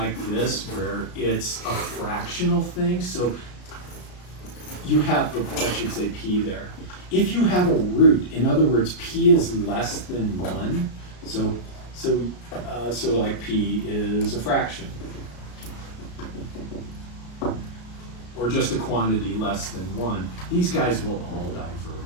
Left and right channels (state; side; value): late; right; 33 ms